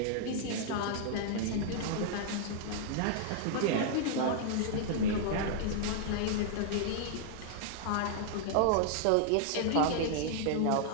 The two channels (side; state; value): both; different; correlation -0.01